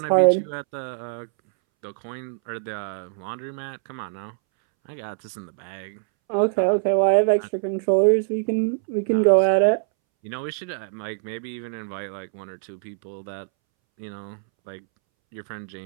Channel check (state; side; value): silent; left; 62 dB below the other